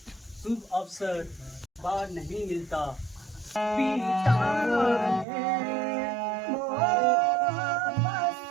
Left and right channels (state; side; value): drops out; left; at 5.2 s